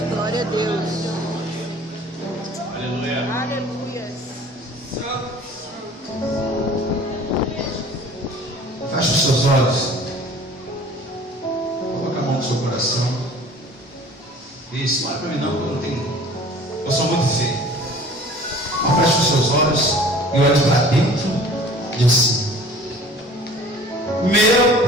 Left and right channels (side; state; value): both; normal; correlation 0.47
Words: Glória a Deus. Aleluia. Aleluia. Feche os seus olhos. Coloque a mão no seu coração. Isso, não olha para mim não, porque eu não tenho. Eu sou muito feio. Feche os seus olhos e olhe para dentro de si.